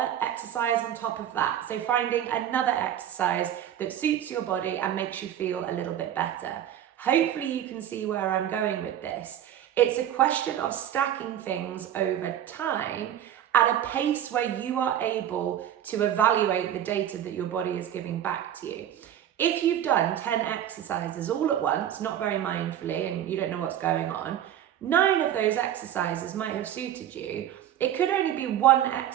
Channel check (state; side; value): quieter; left; 10.8 dB